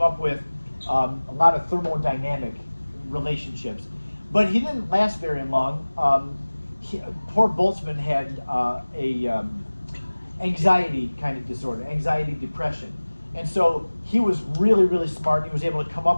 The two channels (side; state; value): both; inverted; correlation -1.00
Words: up with a lot of thermodynamic relationships, but he didn't last very long. Poor Boltzmann had anxiety kind of disorder, anxiety depression. And so he was really smart. He was able to come